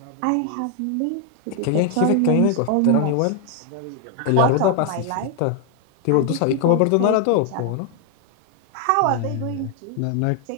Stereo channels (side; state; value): both; different; correlation 0.00